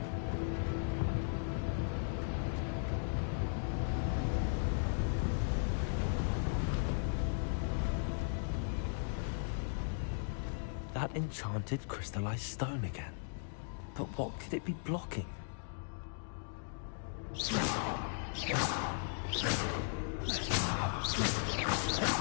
That enchanted crystallized stone again. But what could it be blocking?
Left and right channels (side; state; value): right; silent; digital silence